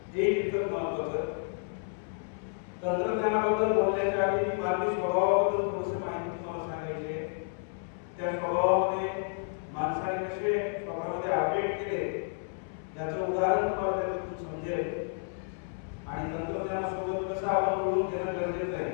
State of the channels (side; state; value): right; silent; 57 dB below the other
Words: हे इतकं महत्त्वाचं. तंत्रज्ञानाबद्दल बोलण्याच्या आधी मी मानवी स्वभावाबद्दल थोडीशी माहिती तुम्हाला सांगायची आहे. त्या स्वभावामध्ये माणसाने कसे स्वतःमध्ये अपडेट केले याचं उदाहरण तुम्हाला त्यातून समजेल आणि तंत्रज्ञानासोबत कसं आपण बोलून घेणं गरजेचं आहे